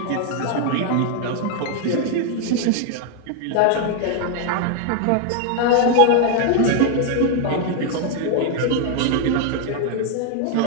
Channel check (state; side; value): different; both; correlation 0.00